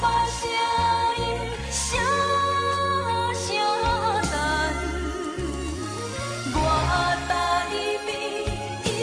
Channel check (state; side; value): identical; both; correlation 1.00